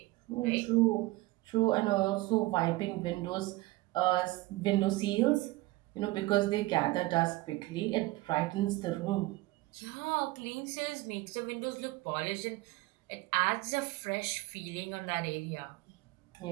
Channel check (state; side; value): quieter; left; 19.8 dB